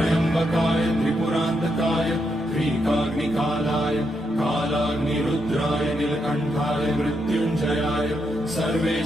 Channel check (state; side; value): normal; both; correlation 0.81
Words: त्रिपुरान्तकाय त्रिकाग्निकालाय कालाग्निरुद्राय नीलकण्ठाय मृत्युञ्जयाय